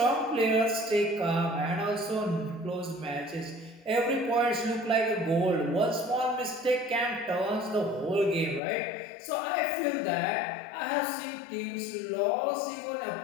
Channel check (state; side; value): drops out; right; at 8.6 s